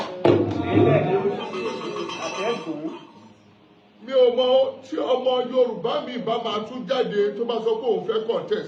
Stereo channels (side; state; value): both; identical; correlation 1.00